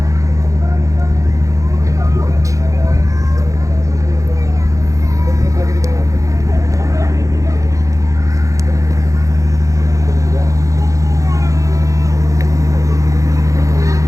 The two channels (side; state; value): left; late; 0.16 ms